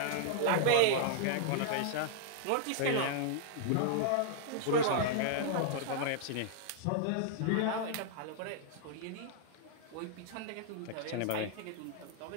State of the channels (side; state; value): both; different; correlation -0.01